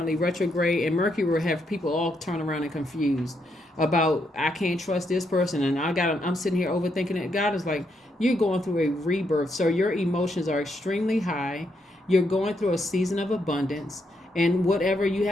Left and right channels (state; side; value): normal; both; correlation 0.78